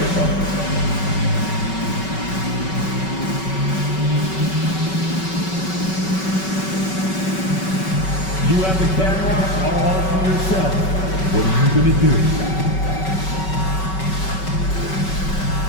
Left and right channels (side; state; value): right; late; 5.3 ms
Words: bro. You have the camera all to yourself. What are you going to do?